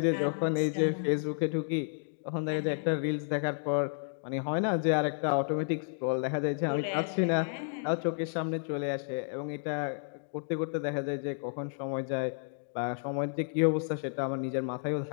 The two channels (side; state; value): right; silent; digital silence